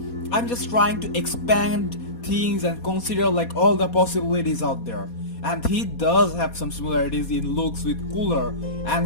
I'm just trying to expand things and consider like all the possibilities out there. And he does have some similarities in looks with Cooler,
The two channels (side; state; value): right; late; 4.2 ms